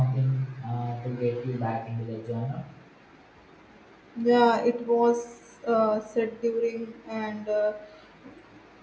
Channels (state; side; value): identical; both; correlation 1.00